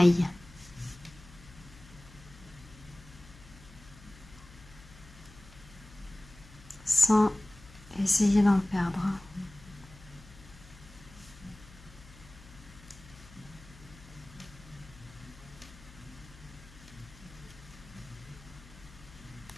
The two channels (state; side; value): noise; left; hum, 20 dB below the sound